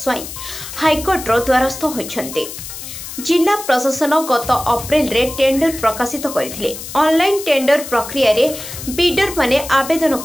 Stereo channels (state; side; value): noise; left; hiss, 10 dB below the sound